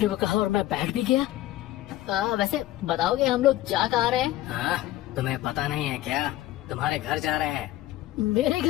को कहा और मैं बैठ भी गया। वैसे बताओगे हम लोग जा कहाँ रहे हैं? हाँ, तुम्हें पता नहीं है क्या? तुम्हारे घर जा रहे हैं। मेरे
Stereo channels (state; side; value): quieter; right; 15.2 dB